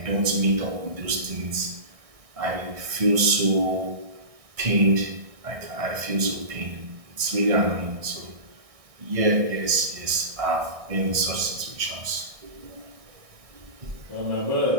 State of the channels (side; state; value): left; late; 1.6 ms